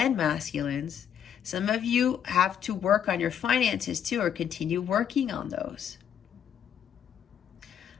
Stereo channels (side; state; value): right; quieter; 8.9 dB